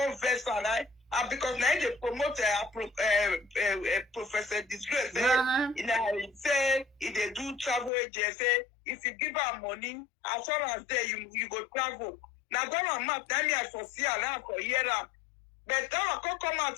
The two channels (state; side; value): drops out; right; at 7.9 s